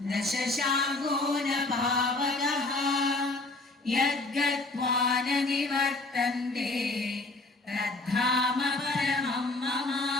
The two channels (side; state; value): right; quieter; 3.1 dB